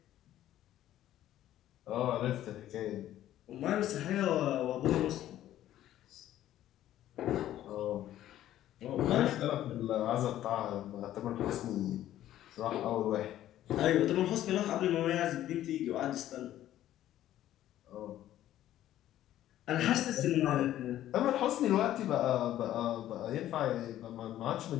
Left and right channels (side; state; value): right; quieter; 12.8 dB